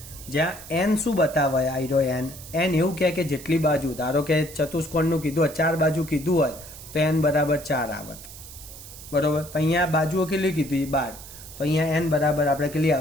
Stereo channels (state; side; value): noise; right; hiss, 15 dB below the sound